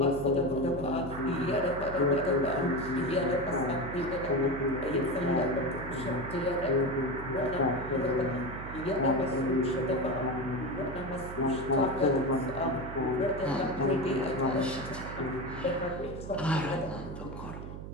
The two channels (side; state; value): right; noise; hum, 9 dB below the sound